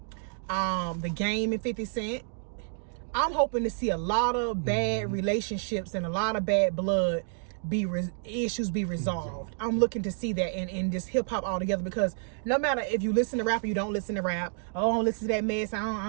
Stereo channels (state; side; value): silent; left; 58 dB below the other